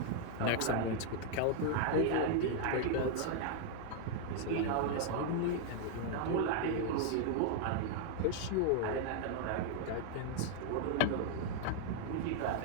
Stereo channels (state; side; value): different; both; correlation 0.00